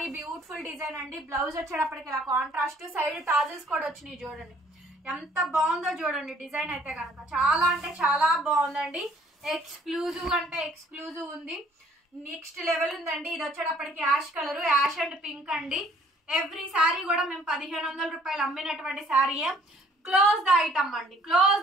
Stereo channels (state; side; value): normal; both; correlation 0.59